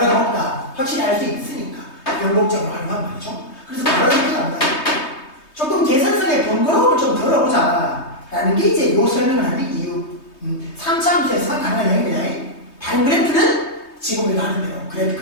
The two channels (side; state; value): right; late; 3.2 ms